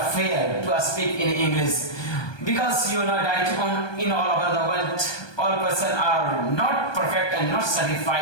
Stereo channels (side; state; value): right; late; 1.2 ms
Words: fear to speak in English. Because you know that in all over the world, all persons are not perfect and not